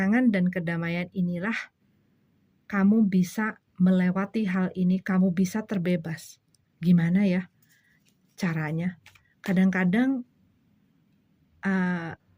dan kedamaian inilah kamu bisa melewati hal ini, kamu bisa terbebas. Gimana ya caranya? Kadang-kadang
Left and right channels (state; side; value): identical; both; correlation 1.00